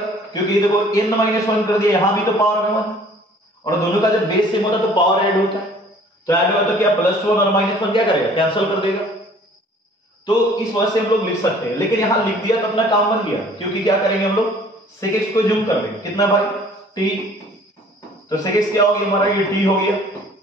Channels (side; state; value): both; normal; correlation 0.53